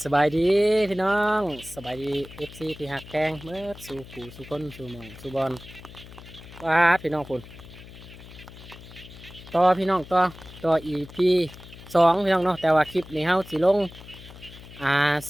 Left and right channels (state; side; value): noise; left; hum, 17 dB below the sound